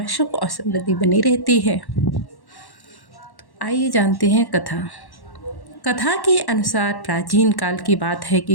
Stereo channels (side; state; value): right; late; 1.1 ms